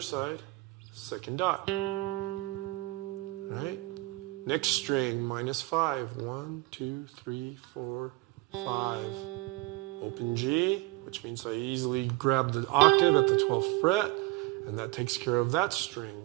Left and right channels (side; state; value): left; quieter; 21.4 dB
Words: 2nd dot. All right. Next string, -5. 1, 2, 3, 4, 5. Open G, which means I easily grab the octave at the 12th fret. And that takes care of that string.